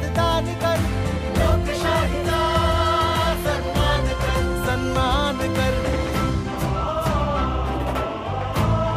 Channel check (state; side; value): identical; both; correlation 1.00